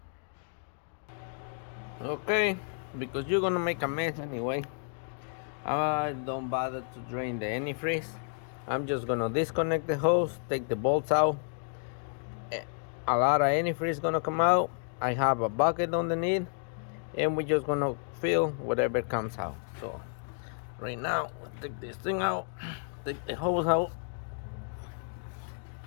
okay, because you're gonna make a mess anyway, I don't bother to drain the antifreeze. I'm just gonna disconnect the hose, take the bolts out. A lot of antifreeze gonna come out. I have a bucket underneath, and we're just gonna fill whatever comes out. So right now, we'll take this thing out, take the hose out.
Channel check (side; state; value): right; silent; 57 dB below the other